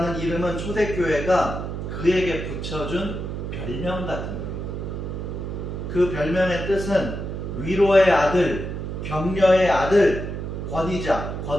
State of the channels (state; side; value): noise; right; hum, 5 dB below the sound